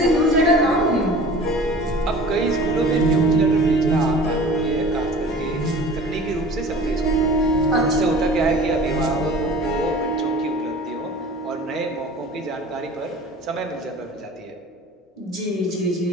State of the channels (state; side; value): normal; both; correlation 0.42